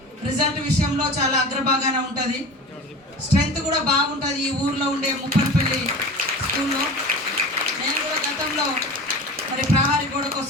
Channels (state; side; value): normal; both; correlation 0.35